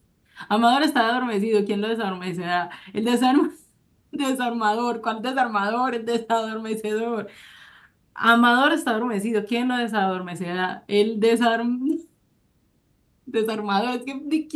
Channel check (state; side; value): identical; both; correlation 1.00